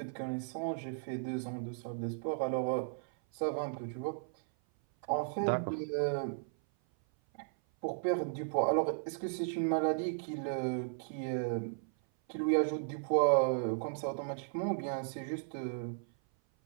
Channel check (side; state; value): left; silent; 54 dB below the other